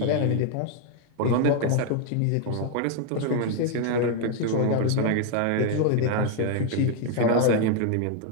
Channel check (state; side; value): different; both; correlation 0.00